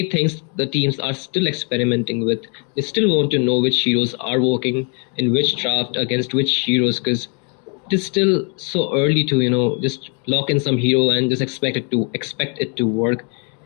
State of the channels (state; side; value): quieter; right; 38.5 dB